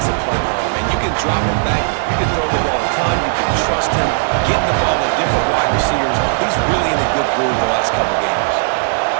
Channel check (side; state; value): left; silent; digital silence